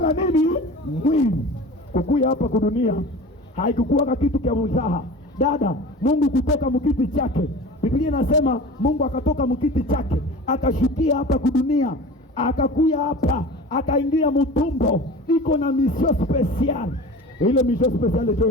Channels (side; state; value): both; normal; correlation 0.37